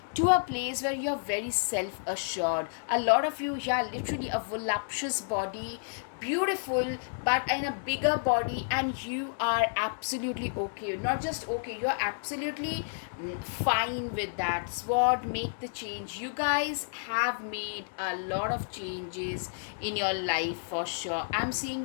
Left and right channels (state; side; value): silent; right; digital silence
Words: to a place where you're very self assured. A lot of you, yeah, literally a voluptuous body, beautiful, but in a bigger body, and you are absolutely okay. Not just okay, you're absolutely fine with that. Sword, make the change. You guys have made a lot of changes in your life for sure. I'm seeing